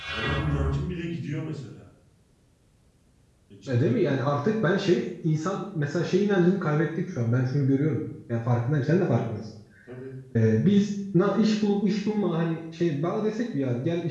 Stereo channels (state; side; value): identical; both; correlation 1.00